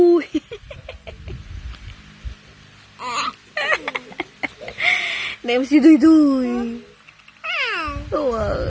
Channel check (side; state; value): both; identical; correlation 1.00